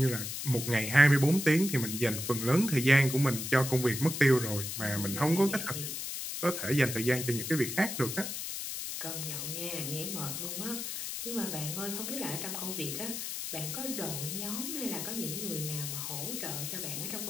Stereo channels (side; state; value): left; noise; hiss, 5 dB below the sound